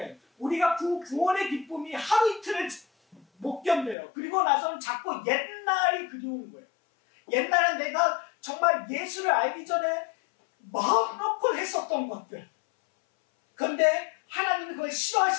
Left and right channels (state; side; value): drops out; right; at 4.0 s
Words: 우리가 그 구원의 기쁨이 하루 이틀을 못 견뎌요. 그리고 나서는 자꾸 옛날이 그리운 거예요. 옛날에 내가 정말 예수를 알기 전에 마음 놓고 했었던 것들. 그런데 하나님이 그걸